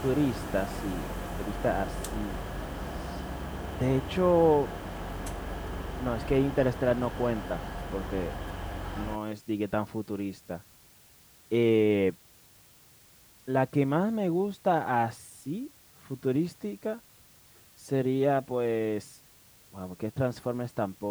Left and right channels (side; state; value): both; identical; correlation 1.00